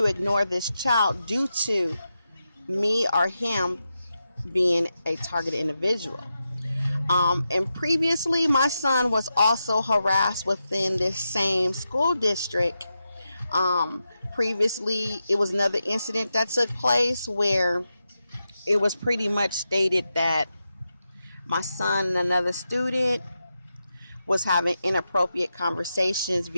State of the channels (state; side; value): inverted; both; correlation -0.89